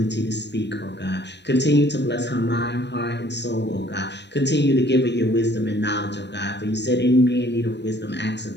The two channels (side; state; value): right; late; 0.50 ms